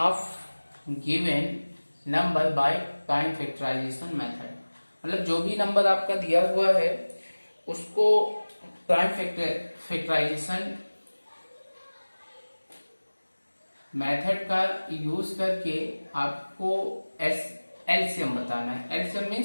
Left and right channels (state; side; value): inverted; both; correlation -1.00